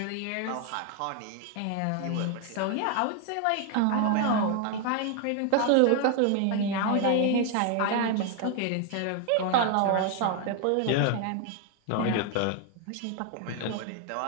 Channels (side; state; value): both; different; correlation 0.01